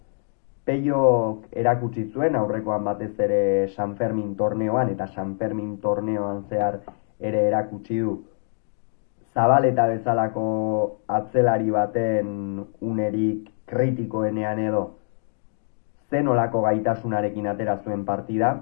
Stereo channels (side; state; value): right; silent; digital silence